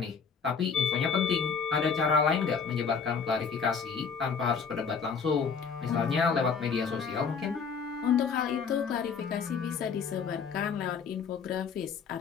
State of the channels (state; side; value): quieter; right; 5.9 dB